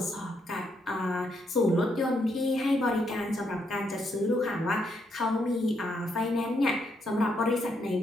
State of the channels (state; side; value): normal; both; correlation 0.77